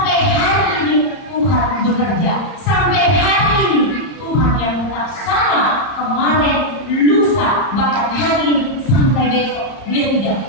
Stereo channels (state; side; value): late; right; 31 ms